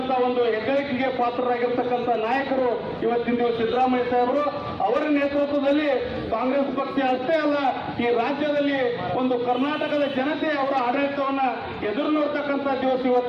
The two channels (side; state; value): both; identical; correlation 1.00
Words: ಒಂದು ಹೆಗ್ಗಳಿಕೆಗೆ ಪಾತ್ರರಾಗಿರ್ತಕ್ಕಂಥ ನಾಯಕರು ಇವತ್ತಿನ ದಿವಸ ಸಿದ್ದರಾಮಯ್ಯ ಸಾಹೇಬರು. ಅವರ ನೇತೃತ್ವದಲ್ಲಿ ಕಾಂಗ್ರೆಸ್ ಪಕ್ಷ ಅಷ್ಟೇ ಅಲ್ಲ, ಈ ರಾಜ್ಯದಲ್ಲಿ ಒಂದು ಕರ್ನಾಟಕದ ಜನತೆ ಅವರ ಆಡಳಿತವನ್ನ ಎದುರು ನೋಡ್ತಕ್ಕಂಥ ದಿವಸ